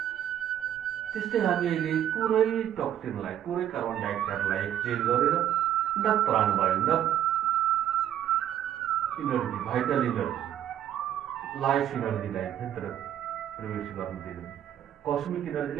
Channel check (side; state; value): left; quieter; 10.8 dB